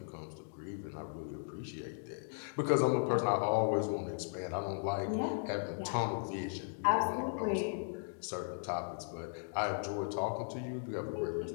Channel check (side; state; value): right; silent; digital silence